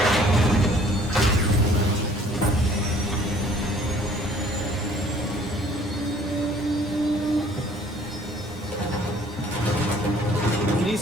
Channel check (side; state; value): both; normal; correlation 0.56